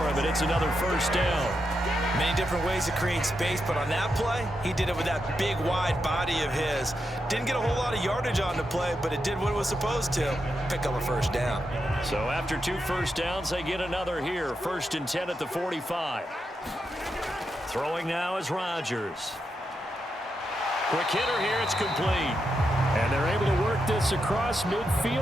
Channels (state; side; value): normal; both; correlation 0.85